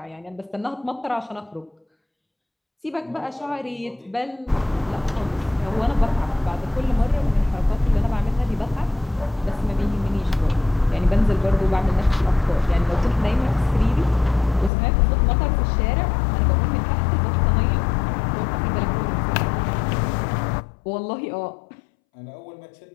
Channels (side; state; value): right; drops out; at 14.7 s